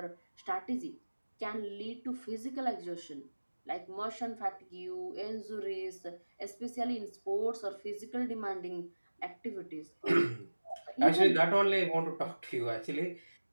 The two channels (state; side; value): inverted; both; correlation -1.00